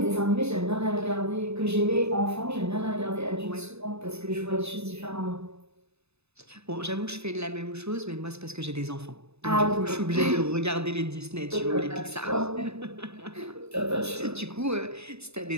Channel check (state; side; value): late; left; 0.80 ms